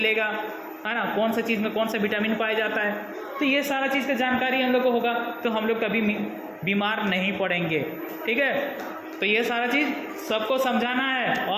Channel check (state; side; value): identical; both; correlation 1.00